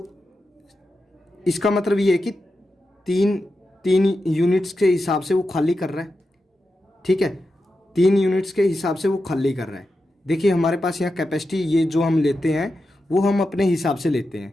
इसका मतलब ये है कि तीन यूनिट्स के हिसाब से वो खाली कर रहा है। ठीक है, 3 यूनिट्स के हिसाब से वो खाली कर रहा है। देखिए हमारे पास यहाँ कैपेसिटी ये जो हम लेते हैं वो हम अपने हिसाब से लेते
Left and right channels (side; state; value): both; normal; correlation 0.89